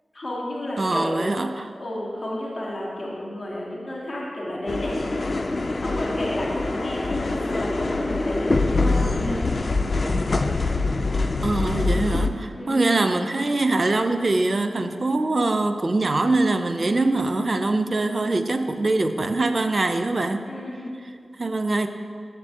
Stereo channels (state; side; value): normal; both; correlation 0.93